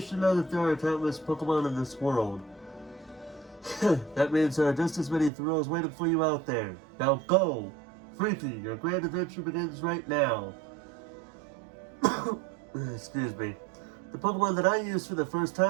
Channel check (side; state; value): left; drops out; at 5.3 s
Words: know that there are countless Pokemon in this world. That means there are just as many thrills waiting for you out there. Now go! Freaky, your grand adventure begins right now. Excuse me. The Pokemon that I used for the first